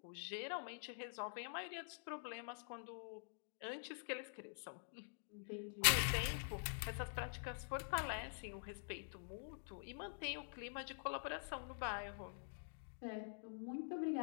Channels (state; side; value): silent; right; digital silence